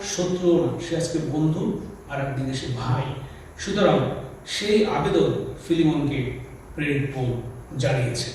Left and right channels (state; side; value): identical; both; correlation 1.00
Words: শত্রুও না, সে আজকে বন্ধু, আর একদিকে সে ভাই। সুতরাং সেই আবেদন ফিলিমনকে প্রেরিত পৌল জানিয়েছে।